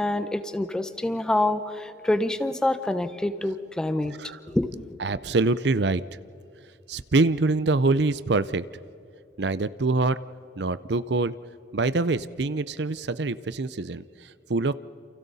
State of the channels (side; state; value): both; normal; correlation 0.54